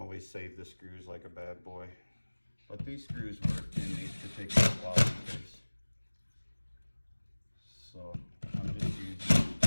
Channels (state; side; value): inverted; both; correlation -1.00